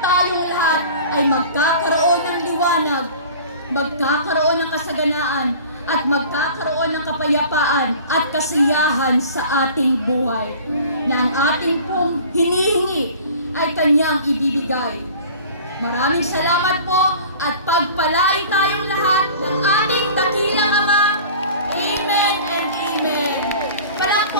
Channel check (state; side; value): inverted; both; correlation -0.43